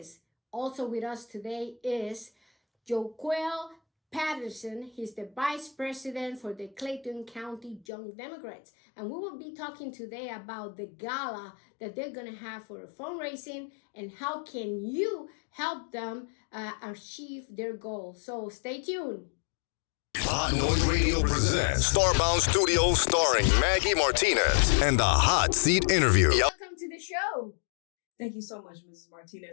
Also with us today is Joquel Patterson. He's the vice president for the Clayton County Young Democrats. And we will be talking today about the gala that they're going to have for fundraising and how can you help them achieve their goals. So stay tuned. Hot Noise Radio presents Starbound Studios starring Maggy Martinez and the Hot Seat Interview. Welcome to the show. Thank you so much, Mrs.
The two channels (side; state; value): right; drops out; at 7.9 s